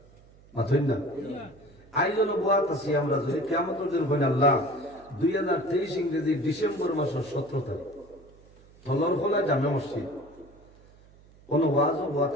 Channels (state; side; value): noise; right; hum, 26 dB below the sound